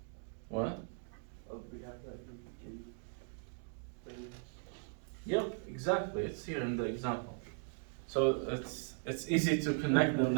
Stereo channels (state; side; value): silent; left; 52 dB below the other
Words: What? Yep, exactly. It's here in the example. So it's easy to connect them